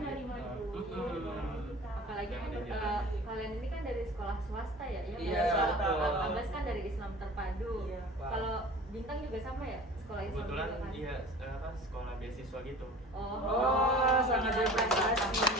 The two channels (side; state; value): both; normal; correlation 0.41